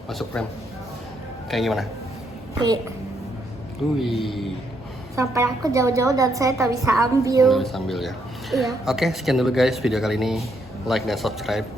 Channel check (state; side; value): normal; both; correlation 0.75